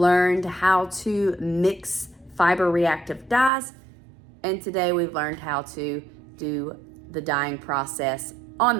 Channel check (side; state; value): left; drops out; at 3.5 s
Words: how to mix fiber reactive dyes. And today we've learned how to do the dyeing process on